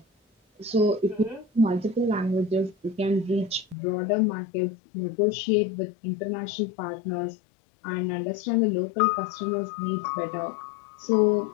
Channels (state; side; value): drops out; right; at 3.8 s